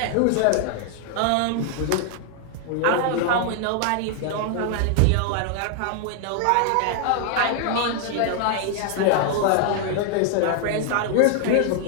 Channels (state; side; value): different; both; correlation 0.00